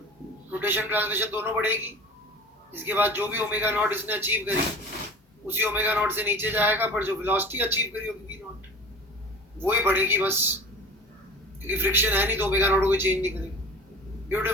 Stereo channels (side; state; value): both; normal; correlation 0.39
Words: रोटेशन ट्रांसलेशन दोनों बढ़ेगी। इसके बाद जो भी ओमेगा नॉट इसने अचीव करी उसी ओमेगा नॉट से नीचे जाएगा, पर जो वेलोसिटी अचीव करी होगी वी नॉट वो ही बढ़ेगी बस, क्योंकि फ्रिक्शन है नहीं तो ओमेगा नॉट को चेंज नहीं करेगा।